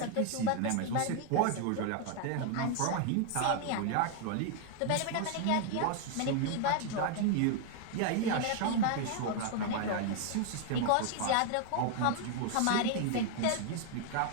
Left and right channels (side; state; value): both; different; correlation 0.00